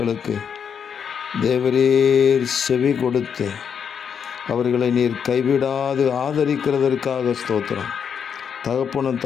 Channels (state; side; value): quieter; right; 7.3 dB